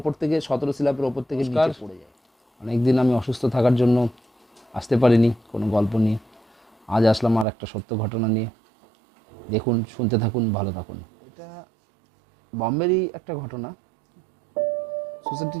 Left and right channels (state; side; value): drops out; left; at 7.5 s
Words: থেকে 17 স্ল্যাবের ওপর থেকে নিচে পড়ে যায়। অনেকদিন আমি অসুস্থ থাকার জন্য আসতে পারিনি কোনো গল্প নিয়ে। আজ আসলাম আর একটা সত্য ঘটনা নিয়ে। দেখুন, শুনতে থাকুন, ভালো থাকুন। এটা বম্বেরই একটা ঘটনা।